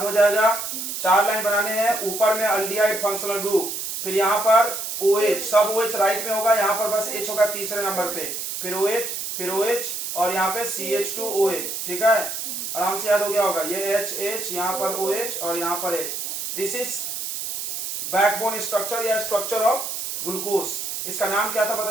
हो जाएगा। 4 लाइन बनाने हैं, ऊपर में अल्डिहाइड फंक्शनल ग्रुप, फिर यहाँ पर OH, सब OH राइट में होगा, यहाँ पर बस H होगा तीसरे नंबर पे, फिर OH, फिर OH और यहाँ पे CH2OH। ठीक है, आराम से याद हो गया होगा। ये H, यहाँ पर OH और यहाँ पर H। This is backbone structure या स्ट्रक्चर ऑफ ग्लूकोज। इसका नाम क्या था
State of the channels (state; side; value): noise; right; hiss, 5 dB below the sound